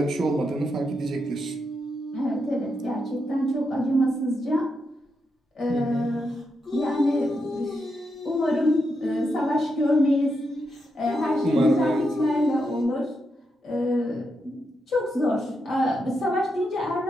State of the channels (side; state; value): both; normal; correlation 0.83